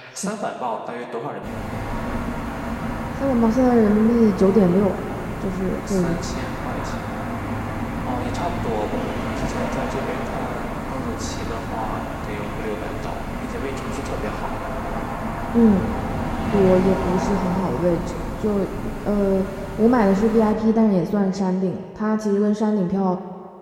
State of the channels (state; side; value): identical; both; correlation 1.00